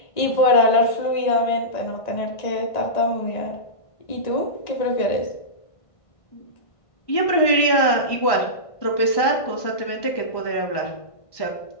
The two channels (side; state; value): right; late; 1.5 ms